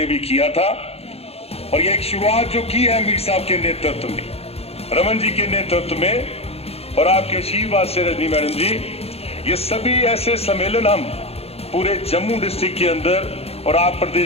भी किया था। और ये एक शुरुआत जो की है मीर साहब के नेतृत्व में, रमन जी के नेतृत्व में और आपके आशीर्वाद से रजनी मैडम जी, ये सभी ऐसे सम्मेलन हम पूरे जम्मू डिस्ट्रिक्ट के अंदर, और आप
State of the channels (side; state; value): right; late; 0.29 ms